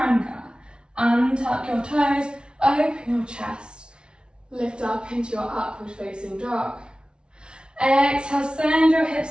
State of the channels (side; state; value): left; late; 0.056 ms